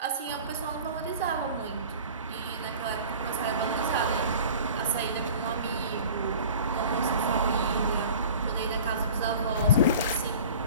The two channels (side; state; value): both; inverted; correlation -0.42